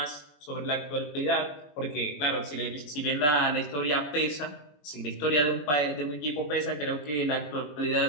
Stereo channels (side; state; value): right; late; 21 ms